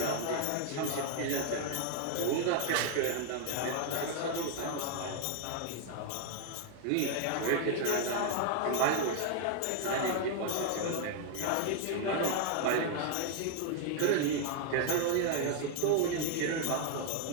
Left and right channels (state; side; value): different; both; correlation 0.00